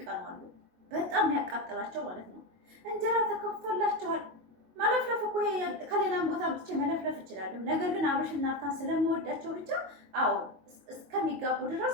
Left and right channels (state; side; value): late; left; 22 ms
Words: አሉ። በጣም የሚያቃጥላቸው ማለት ነው። እንጀራ ተከፍቶላቸዋል። ማለፍለፍ እኮ ከሌላም ቦታ ብቻ መለፍለፍ እችላለሁ። ነገር ግን አብርሽና ሩታን ስለምወዳቸው ብቻ አዎ እስከሚጋቡ ድረስ